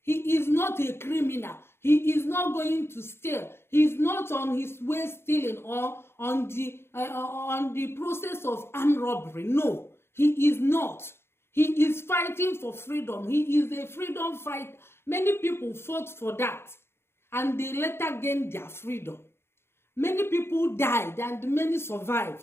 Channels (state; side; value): late; right; 0.12 ms